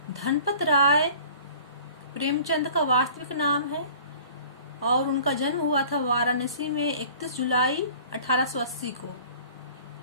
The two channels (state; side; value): inverted; both; correlation -0.47